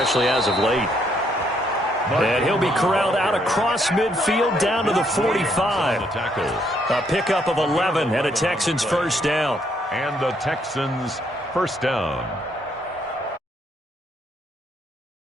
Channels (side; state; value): both; normal; correlation 0.71